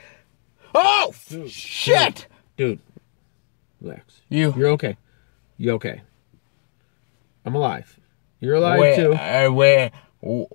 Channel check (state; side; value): silent; right; digital silence